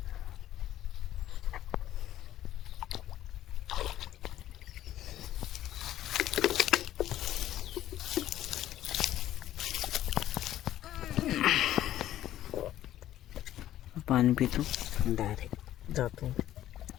पाणी पितो डायरेक्ट जातो.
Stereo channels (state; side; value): quieter; right; 13.0 dB